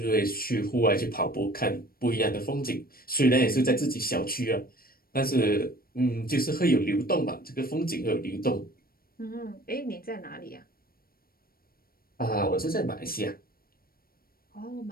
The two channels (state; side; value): late; right; 0.43 ms